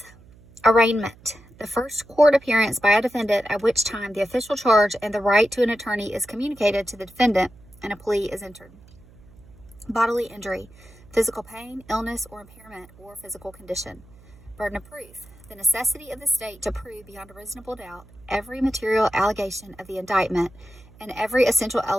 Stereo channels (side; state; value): right; noise; hum, 24 dB below the sound